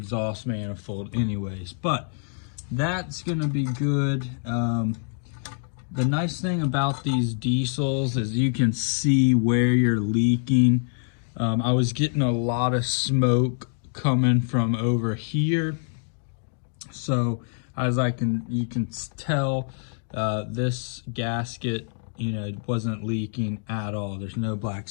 manifold anyways. But that's gonna be good. The nice thing about these diesels is you can see where you're leaking. I was getting a lot of smoke coming from over here. So as you can tell, this gasket, you know, wasn't leaking at all. There's no black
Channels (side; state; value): right; silent; digital silence